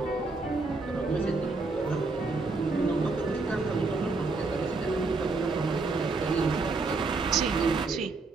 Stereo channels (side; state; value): left; quieter; 3.8 dB